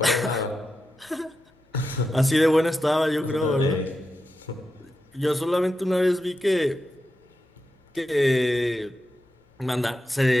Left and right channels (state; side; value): normal; both; correlation 0.88